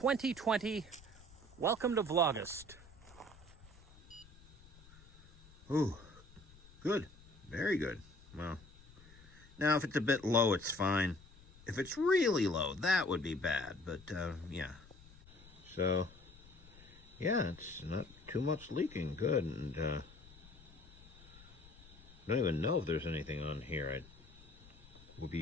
Welcome to VLAUGUST. Ooh, good. Very good. Well, now if it's a bit low, it's fine. If it's really low, that would be bad. But, yeah. So, yeah, it's not too much leaking. Good. And, I don't even know if there's anything on here. It would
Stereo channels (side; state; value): left; noise; rumble, 22 dB below the sound